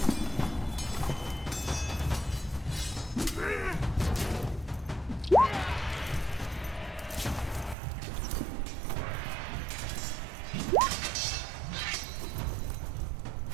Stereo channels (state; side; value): drops out; left; at 7.8 s